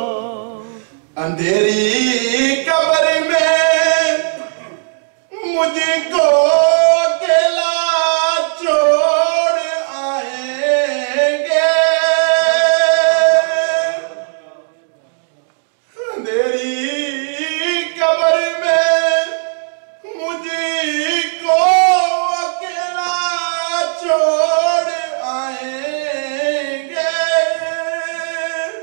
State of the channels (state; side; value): silent; left; digital silence